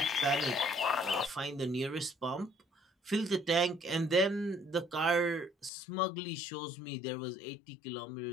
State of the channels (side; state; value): right; drops out; at 5.7 s